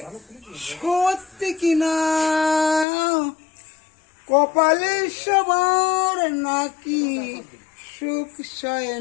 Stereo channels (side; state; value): right; drops out; at 2.9 s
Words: সত্যি কিনা। কপালে সবার নাকি সুখ সয়